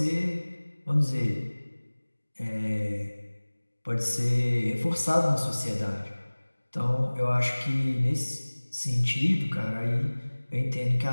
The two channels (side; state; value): both; inverted; correlation -1.00